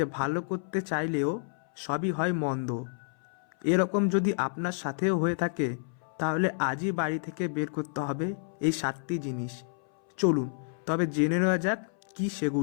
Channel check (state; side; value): silent; right; 58 dB below the other